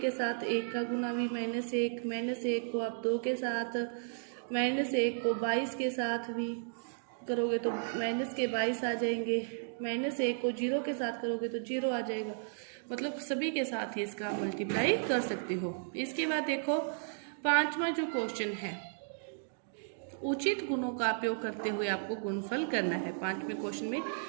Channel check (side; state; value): left; silent; digital silence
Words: के साथ 1 का गुना भी -1, -1 को आप 2 के साथ, -1 को 22 के साथ भी करोगे तो -22 आ जाएंगे, -1 को 0 के साथ करोगे तो 0 आ जाएगा। मतलब सभी के साथ ही इसका मल्टीप्लाई कर सकते हो। इसके बाद देखो पांचवा जो क्वेश्चन है, उचित गुणों का उपयोग करते हुए आपको गुणनफल करना है। पांचवें क्वेश्चन में